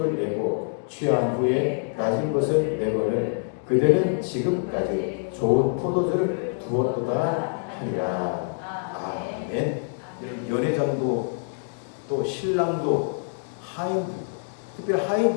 내고 취한 후에 낮은 것을 내거늘 그대는 지금까지 좋은 포도주를 두었도다 하니라. 아멘. 연회장도 또 신랑도 하인들도, 특별히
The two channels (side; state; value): right; silent; digital silence